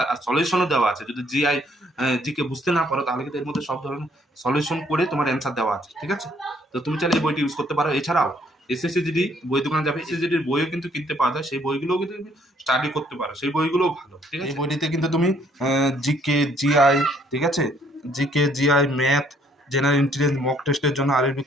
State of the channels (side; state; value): both; normal; correlation 0.65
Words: আর সলিউশনও দেওয়া আছে। যদি জিকে বুঝতে না পারো, তাহলে কিন্তু এর মধ্যে সব ধরনের সলিউশন করে তোমার অ্যান্সার দেওয়া আছে, ঠিক আছে। তো তুমি চাইলে এই বইটি ইউজ করতে পারো। এছাড়াও এসএসসি জিডি বই দোকানে যাবে, এসএসসি জিডির বইও কিন্তু কিনতে পাওয়া যায়, সেই বইগুলোও কিন্তু তুমি স্টাডি করতে পারো, সেই বইগুলোও ভালো, ঠিক আছে। এই বইটিতে কিন্তু তুমি জিকে জিআই, ঠিক আছে, GK GI math, general intelligence, mock টেস্টের জন্য আরবি